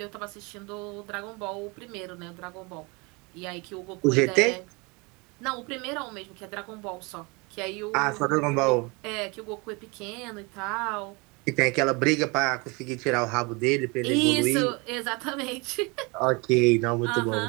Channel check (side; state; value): left; quieter; 28.0 dB